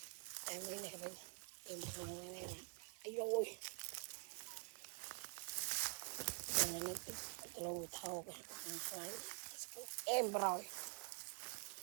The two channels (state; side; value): quieter; left; 37.4 dB